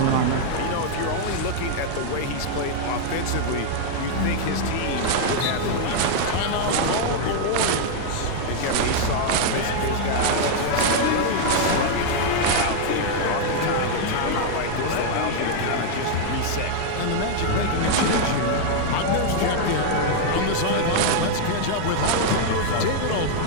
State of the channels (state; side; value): different; both; correlation 0.00